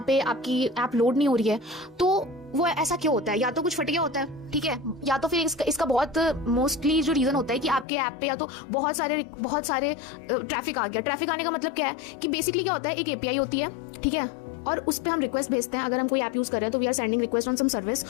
पे आपकी ऐप लोड नहीं हो रही है, तो वो ऐसा क्यों होता है? या तो कुछ फट गया होता है, ठीक है, या तो फिर इसका बहुत मोस्टली जो रीजन होता है कि आपके ऐप पे या तो बहुत सारे ट्रैफिक आ गया. ट्रैफिक आने का मतलब क्या है कि बेसिकली क्या होता है, एक एपीआई होती है, ठीक है, और उस पर हम रिक्वेस्ट भेजते हैं. अगर हम कोई ऐप यूज कर रहे हैं तो we are sending request on some service,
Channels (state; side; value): drops out; right; at 7.9 s